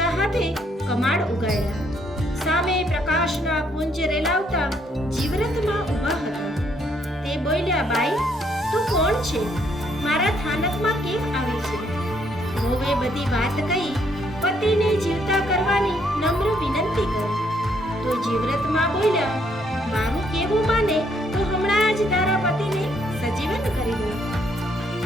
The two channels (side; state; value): both; normal; correlation 0.70